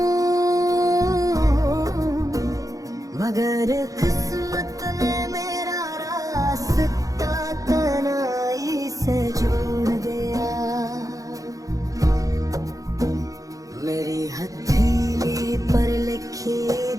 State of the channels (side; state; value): left; late; 0.17 ms